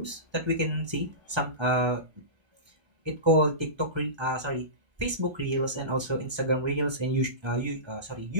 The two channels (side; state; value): left; late; 1.3 ms